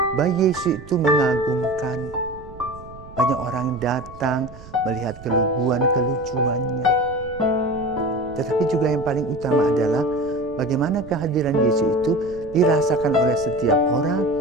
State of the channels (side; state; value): right; noise; rumble, 18 dB below the sound